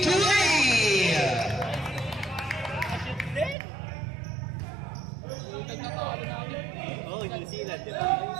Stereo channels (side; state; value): left; drops out; at 3.6 s